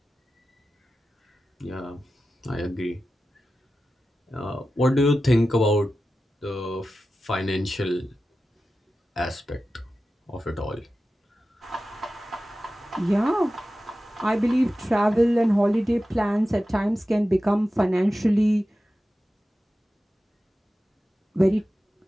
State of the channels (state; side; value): normal; both; correlation 0.93